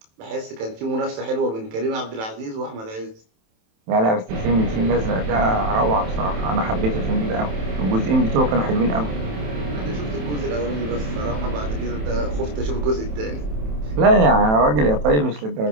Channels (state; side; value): late; left; 27 ms